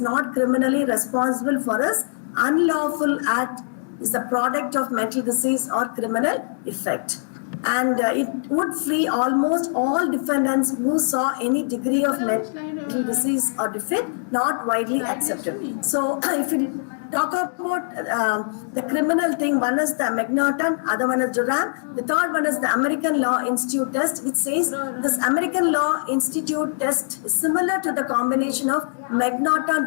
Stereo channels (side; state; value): right; silent; digital silence